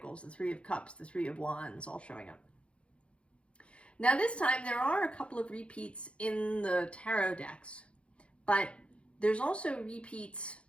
the 3 of Cups, the 3 of Wands all showing up. Now this time there are a couple of repeats in the tarot decks, but there's also repeats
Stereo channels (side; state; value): right; late; 0.060 ms